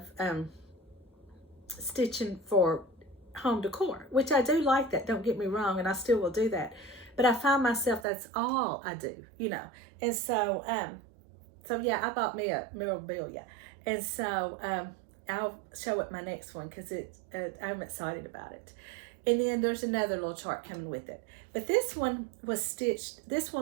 stitching for home decor, which I do like that, don't get me wrong, and I still will do that, but I find myself that's all I do, you know. And so so yeah, I bought me a memorabilia, and so I'll show it my next one because I'm excited about it. And then there's another little chart coming with it, but this one was stitched, this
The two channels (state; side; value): drops out; left; at 8.1 s